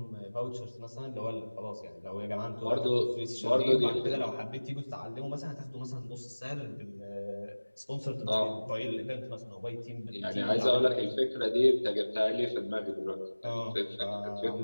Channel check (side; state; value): both; inverted; correlation -1.00